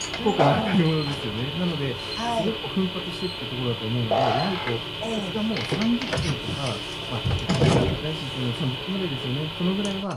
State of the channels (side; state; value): both; identical; correlation 1.00